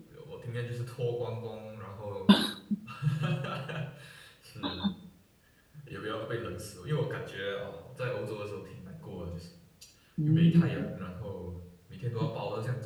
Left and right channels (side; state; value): both; identical; correlation 1.00